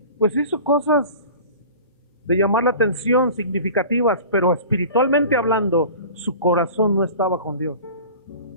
pues hizo cosas de llamar la atención, significativas, pero espiritualmente hablando, su corazón no estaba con Dios.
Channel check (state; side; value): inverted; both; correlation -0.39